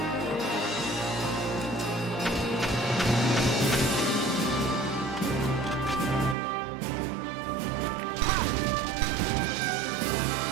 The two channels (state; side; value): drops out; left; at 6.4 s